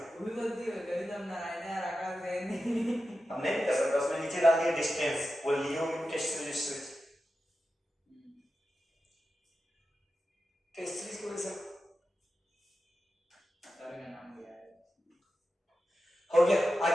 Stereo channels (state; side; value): normal; both; correlation 0.92